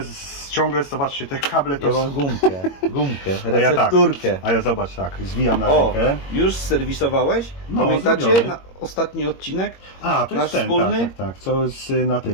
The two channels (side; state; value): right; late; 21 ms